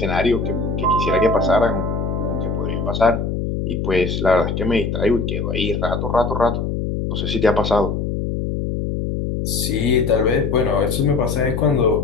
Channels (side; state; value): left; noise; hum, 2 dB below the sound